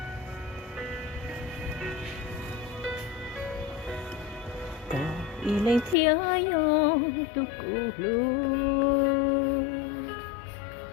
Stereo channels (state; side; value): drops out; right; at 6.0 s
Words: Có ý lên thiên yo tu cụ lu,